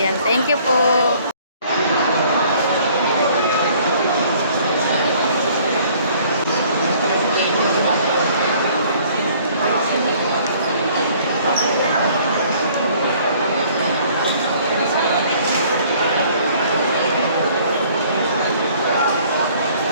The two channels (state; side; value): inverted; both; correlation -0.57